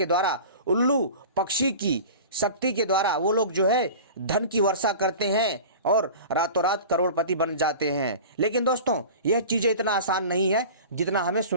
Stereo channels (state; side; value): inverted; both; correlation -0.37